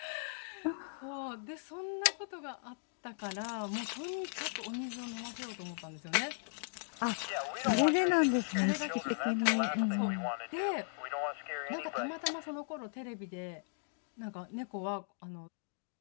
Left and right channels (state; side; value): silent; right; digital silence